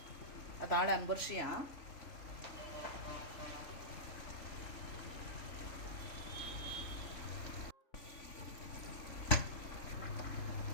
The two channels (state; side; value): late; right; 3.5 ms